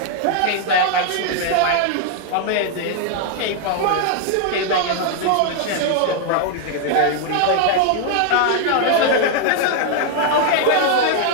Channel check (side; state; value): both; different; correlation 0.00